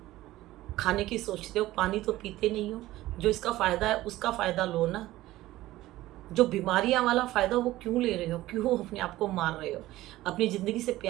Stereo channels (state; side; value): quieter; left; 16.3 dB